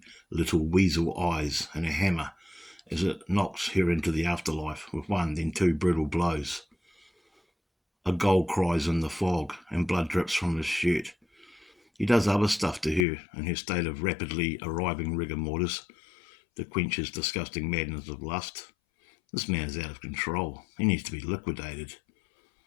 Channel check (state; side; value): drops out; right; at 13.1 s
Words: little weasel eyes and a hammer as it knocks her into the afterlife with 1, then 2 brutal blows. A gull cries in the fog, and blood drips from his shirt. He does other stuff to her in her state of rapidly arriving rigor mortis to quench his disgusting madness of lust. This man is out of control. He needs to be liquidated.